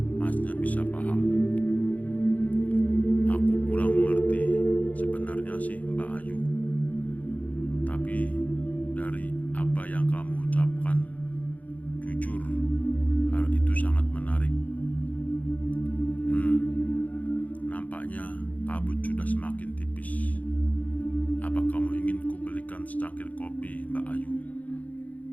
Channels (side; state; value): right; late; 0.074 ms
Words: Masnya bisa paham. Aku kurang mengerti sebenarnya sih Mbak Ayu. Tapi dari apa yang kamu ucapkan, jujur hal itu sangat menarik. Nampaknya kabut sudah semakin tipis. Apa kamu ingin kubelikan secangkir kopi, Mbak Ayu?